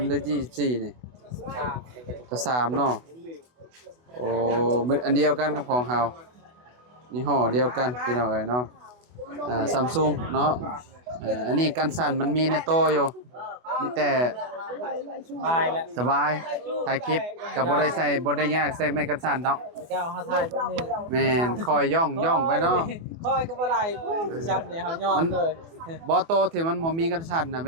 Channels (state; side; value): late; left; 24 ms